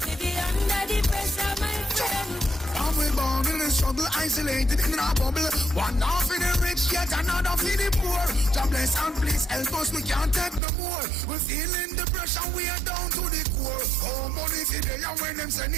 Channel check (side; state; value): left; drops out; at 10.6 s